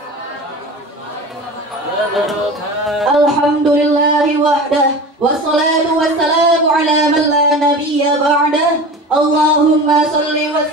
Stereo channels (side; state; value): both; normal; correlation 0.33